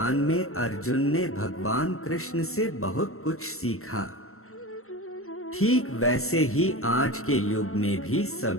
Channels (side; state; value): right; late; 0.63 ms